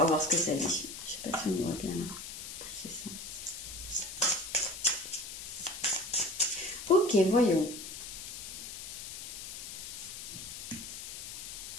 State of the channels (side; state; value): left; noise; hiss, 9 dB below the sound